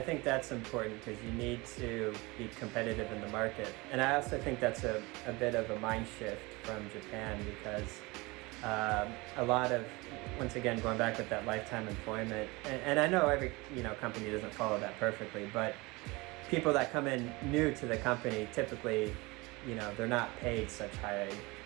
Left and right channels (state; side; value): quieter; left; 24.0 dB